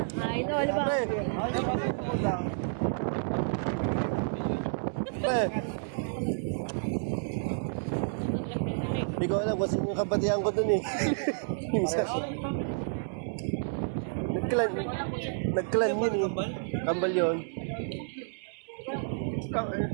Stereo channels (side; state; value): left; silent; 58 dB below the other